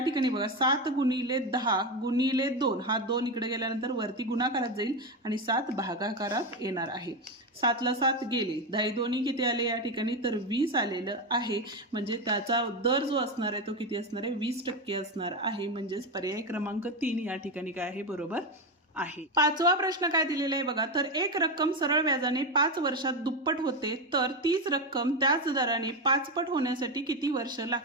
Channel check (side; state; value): both; normal; correlation 0.13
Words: बघा 7 गुणिले 10 गुणिले 2, हा 2 इकडे गेल्यानंतर वरती गुणाकारात जाईल, आणि 7 भागाकारात येणार आहे. 7ला 7 गेले, 10 दोन्ही किती आले या ठिकाणी, तर 20 आलेलं आहे. म्हणजे त्याचा दर जो असणार आहे तो किती असणार आहे, 20% असणार आहे. म्हणजेच पर्याय क्रमांक 3 या ठिकाणी काय आहे, बरोबर आहे. 5वा प्रश्न काय दिलेला आहे बघा, तर एक रक्कम सरळ व्याजाने 5 वर्षात दुप्पट होते, तर तीच रक्कम त्याच दराने 5 पट होण्यासाठी किती वर्ष